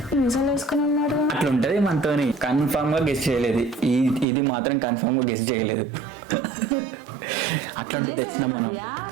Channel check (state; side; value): drops out; left; at 4.2 s